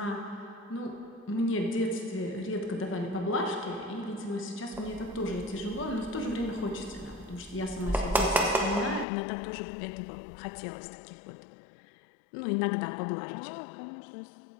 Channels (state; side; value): drops out; right; at 9.1 s